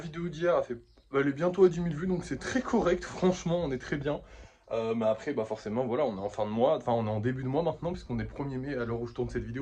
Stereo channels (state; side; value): identical; both; correlation 1.00